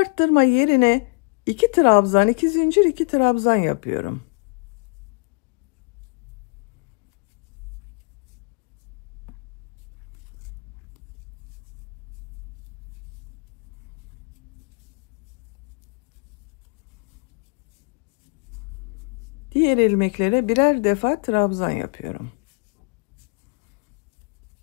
yerine 2 trabzan, 2 zincir, 2 trabzan yapıyorum. Diğer ilmeklere birer defa trabzan yapıyorum.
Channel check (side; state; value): right; quieter; 33.8 dB